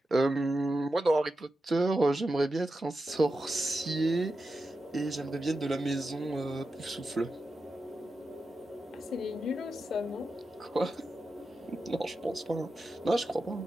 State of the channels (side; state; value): both; normal; correlation 0.90